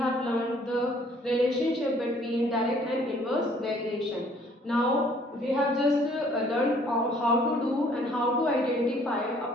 learned the relationship between direct and inverse variation. Now, we have just learned how to do and how to identify a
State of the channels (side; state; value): both; normal; correlation 0.59